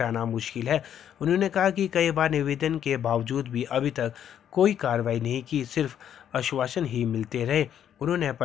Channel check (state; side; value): quieter; right; 9.6 dB